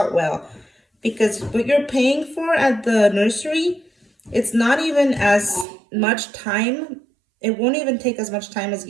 well because what you're paying for at the nursery, it's not even as much time. It won't even take as much time as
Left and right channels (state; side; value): drops out; left; at 5.7 s